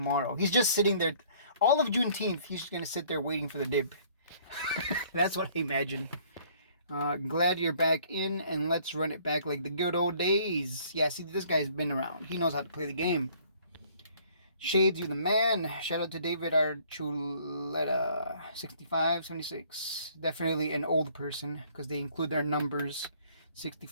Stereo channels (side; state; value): both; inverted; correlation -0.58